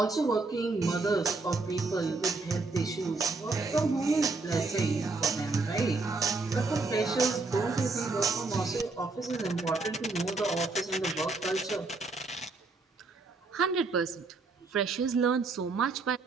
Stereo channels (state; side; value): quieter; left; 3.7 dB